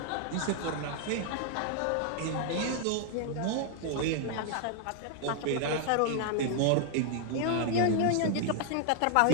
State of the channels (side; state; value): both; different; correlation 0.00